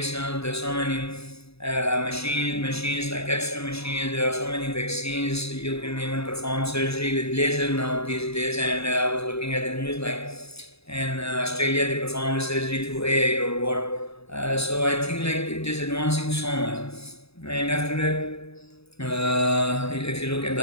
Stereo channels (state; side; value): late; right; 0.78 ms